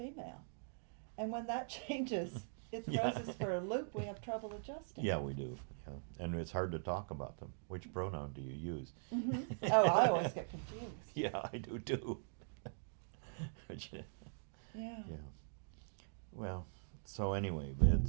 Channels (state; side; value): silent; left; digital silence